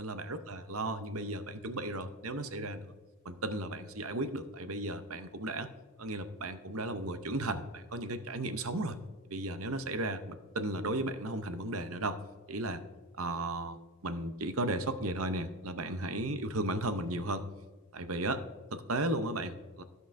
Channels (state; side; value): normal; both; correlation 0.20